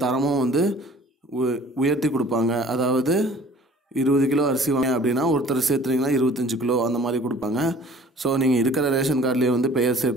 தரமும் உயர்த்தி கொடுப்பாங்க. அதாவது 20 கிலோ அரிசி வாங்க அப்படின்னா ஒருத்தர் சேர்த்துனீங்கன்னா 25 கிலோ அந்த மாதிரி கொடுப்பாங்க. ஸோ நீங்கள் இருக்கிற ரேஷன் கார்ட்லேயே பெயர்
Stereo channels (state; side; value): normal; both; correlation 0.50